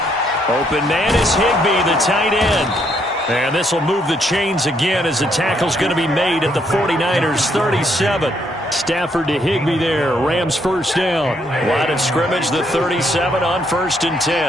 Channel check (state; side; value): normal; both; correlation 0.72